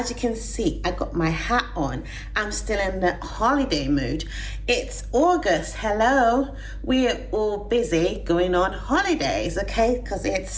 you can see, I got my hat on. I'm still in the holiday mood. It's August. Hello. We're all busy going on holidays, okay? Because it's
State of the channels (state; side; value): identical; both; correlation 1.00